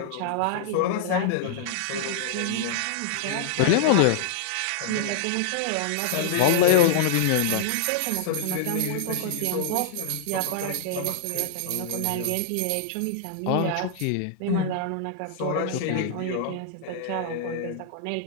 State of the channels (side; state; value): both; different; correlation -0.01